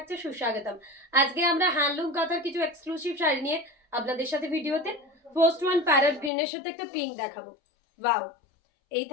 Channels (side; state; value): right; drops out; at 6.3 s